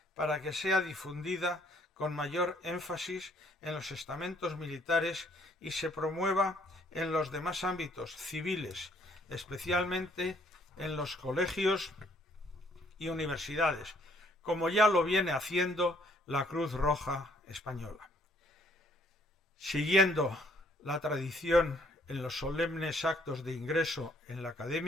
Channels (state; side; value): normal; both; correlation 0.64